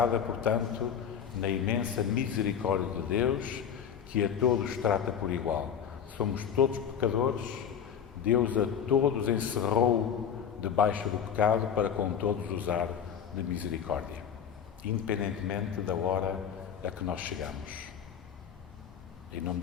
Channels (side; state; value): right; quieter; 8.1 dB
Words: portanto, na imensa misericórdia de Deus, que a todos trata por igual. Somos todos pecadores, Deus a todos encerrou debaixo do pecado para com todos usar de misericórdia, independentemente da hora a que nós chegamos. Em nome